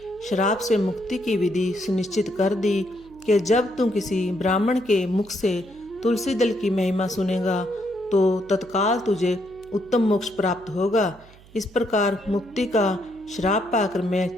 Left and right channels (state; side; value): noise; right; hum, 24 dB below the sound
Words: श्राप से मुक्ति की विधि सुनिश्चित कर दी कि जब तुम किसी ब्राह्मण के मुख से तुलसी दल की महिमा सुनेगा तो तत्काल तुझे उत्तम मोक्ष प्राप्त होगा। इस प्रकार मुक्ति का श्राप पाकर मैं